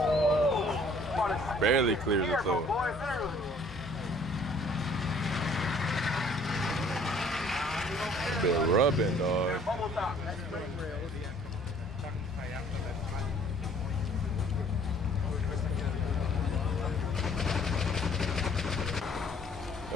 Barely clears it though. Still rubbing, dog. Bubble top. That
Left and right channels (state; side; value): normal; both; correlation 0.57